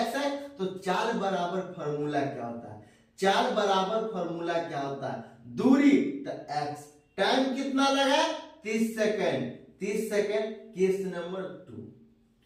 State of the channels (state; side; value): identical; both; correlation 1.00